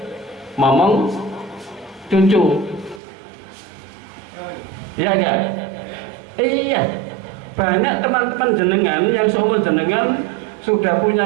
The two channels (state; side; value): drops out; left; at 3.0 s